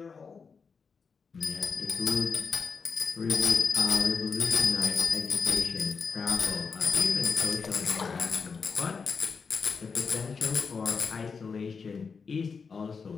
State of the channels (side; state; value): right; quieter; 5.4 dB